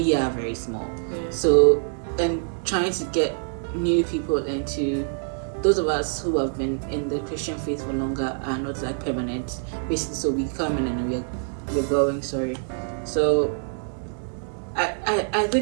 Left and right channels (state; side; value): silent; left; digital silence